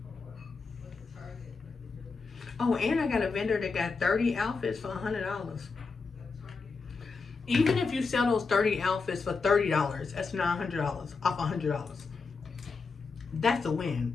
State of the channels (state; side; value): quieter; right; 4.6 dB